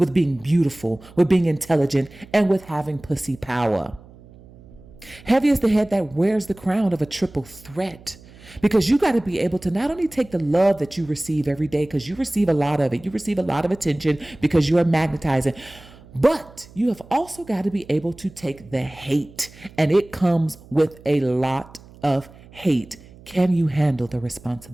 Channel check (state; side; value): noise; right; hum, 22 dB below the sound